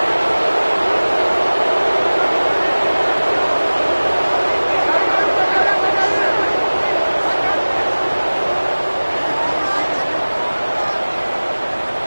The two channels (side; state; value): both; inverted; correlation -1.00